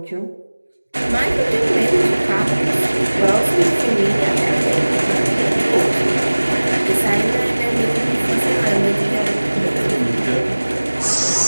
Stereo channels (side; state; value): both; inverted; correlation -1.00